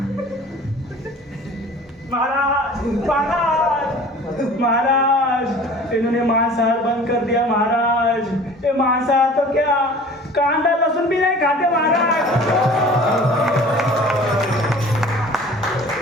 महाराज, इन्होंने मांसाहार बंद कर दिया महाराज। ये मांसाहार तो क्या, कांदा लहसुन भी नहीं खाते महाराज।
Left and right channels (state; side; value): normal; both; correlation 0.45